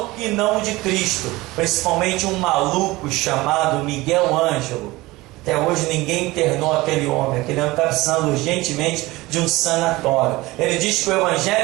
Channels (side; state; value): left; quieter; 20.2 dB